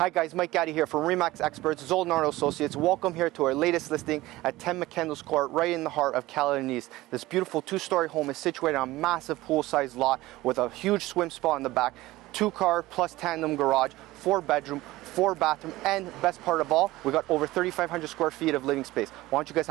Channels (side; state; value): left; quieter; 18.1 dB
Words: Hi guys, Mike Gaddy here from Remax Experts, Zolnardo Associates. Welcome here to our latest listing at 10 Mccandless Crt, right in the heart of Caledon East. This beautiful two-story home is situated on a massive pool-sized lot with a huge swim spot in the back, 2-car plus tandem garage, 4-bedroom, 4-bathroom, and best part of all, we got over 3,500 square feet of living space. Why don't you guys